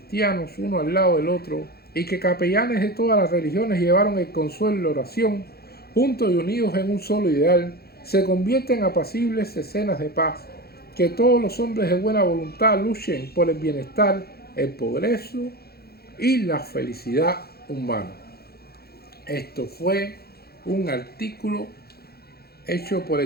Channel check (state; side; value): late; right; 0.46 ms